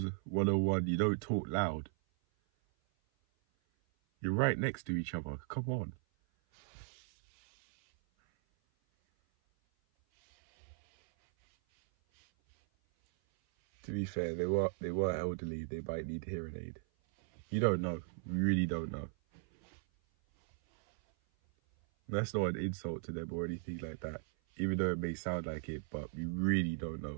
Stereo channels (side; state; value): left; silent; 53 dB below the other